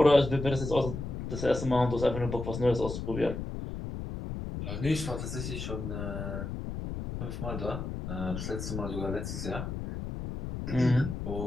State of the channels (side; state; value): left; noise; rumble, 6 dB below the sound